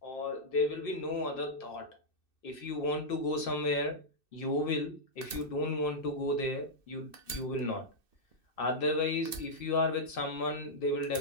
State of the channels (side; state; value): right; late; 2.6 ms